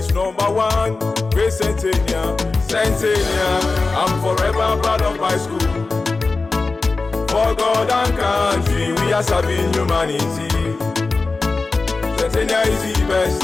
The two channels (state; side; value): quieter; right; 3.8 dB